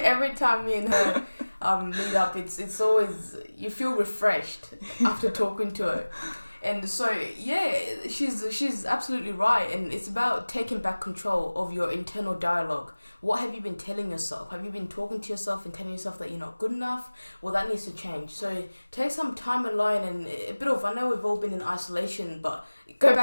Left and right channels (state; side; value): inverted; both; correlation -1.00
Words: time me and her meet up, it's always, you feel refreshed after talking to her. And so, yeah, she's absolutely right. And it's about taking back control of your internal dialogue. What have you been telling yourself? Have you been talking to yourself and telling yourself that you're not good enough? Well, that needs to change. So take some time alone and a bit of, I know we've all been in isolation, but go